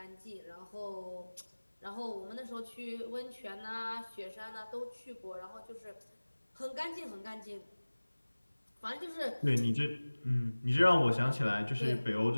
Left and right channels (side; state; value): both; inverted; correlation -1.00